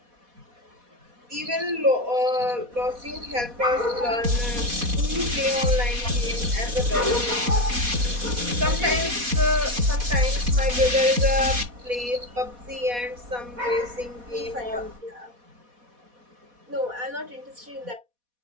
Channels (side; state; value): left; late; 4.1 ms